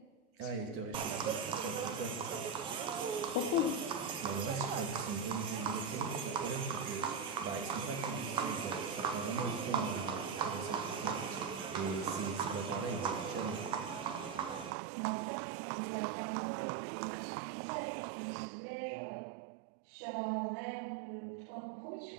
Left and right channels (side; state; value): left; drops out; at 14.8 s